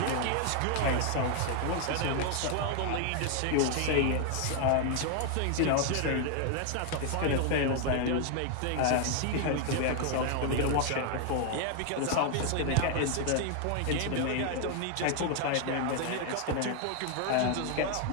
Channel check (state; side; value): different; both; correlation 0.00